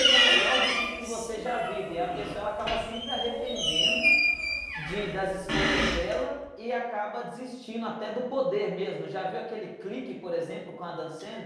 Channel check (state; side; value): identical; both; correlation 1.00